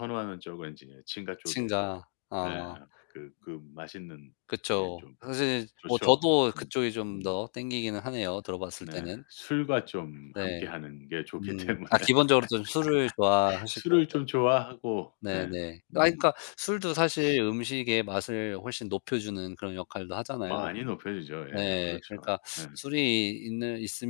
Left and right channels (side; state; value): right; silent; 57 dB below the other